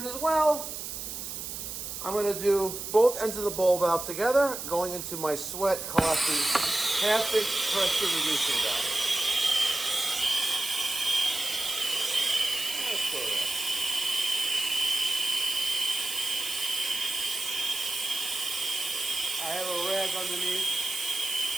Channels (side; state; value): right; noise; hiss, 7 dB below the sound